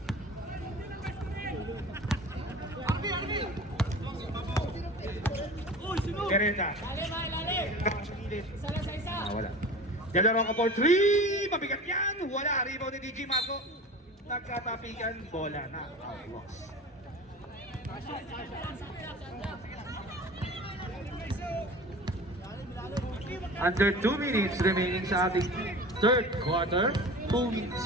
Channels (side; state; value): both; normal; correlation 0.37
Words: Pereta. Wala. De La Roca for 3. Mabigat yan. Wala. Rebound ni DJ Marco. Nagkatapikan. Bola na. Outlaws. Under 2 minutes remaining sa ating third quarter. 2